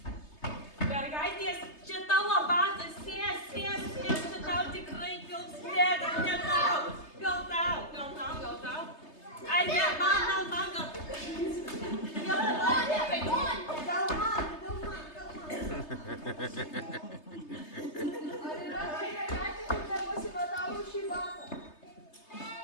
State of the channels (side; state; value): right; late; 3.3 ms